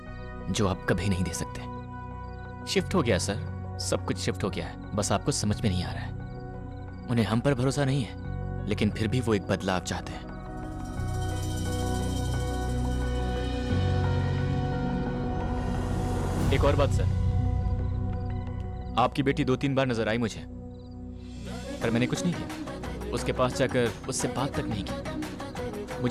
जो आप कभी नहीं दे सकते। शिफ्ट हो गया सर, सब कुछ शिफ्ट हो गया है, बस आपको समझ में नहीं आ रहा है। उन्हें हम पर भरोसा नहीं है, लेकिन फिर भी वो एक बदलाव चाहते हैं। एक और बात सर, आपकी बेटी 2-3 बार नजर आई मुझे। पर मैंने कुछ नहीं किया। उसके पास जाकर उससे बात तक नहीं की।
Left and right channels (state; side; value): identical; both; correlation 1.00